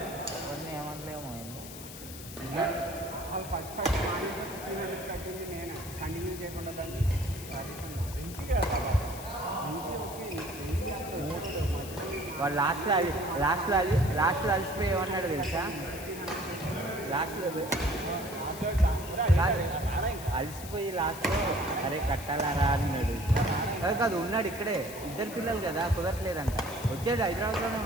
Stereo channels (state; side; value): noise; left; hiss, 13 dB below the sound